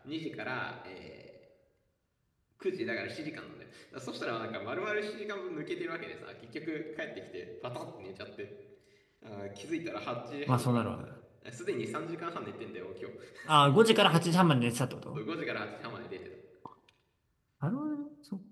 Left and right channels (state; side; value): identical; both; correlation 1.00